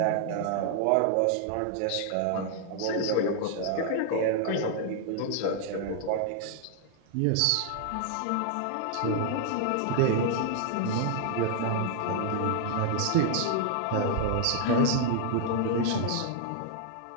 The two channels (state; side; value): different; both; correlation 0.00